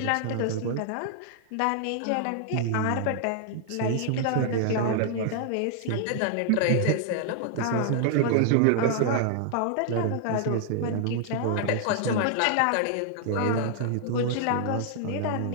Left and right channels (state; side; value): different; both; correlation 0.00